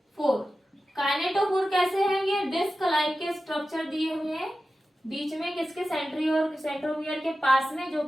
काइनेटोफोर कैसे हैं? ये डिस्क लाइक के स्ट्रक्चर दिए हुए हैं बीच में किसके, सेंट्रोमियर के पास में, जो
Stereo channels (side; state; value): both; normal; correlation 0.93